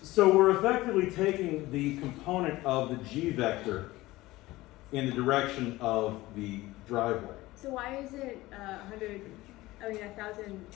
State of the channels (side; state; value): right; quieter; 18.5 dB